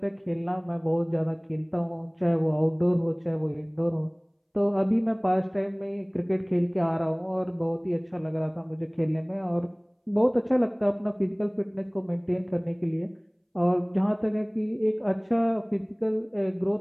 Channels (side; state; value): both; identical; correlation 1.00